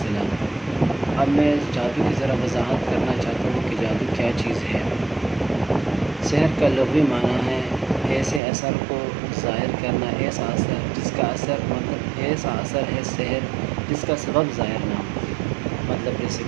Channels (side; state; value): left; drops out; at 8.4 s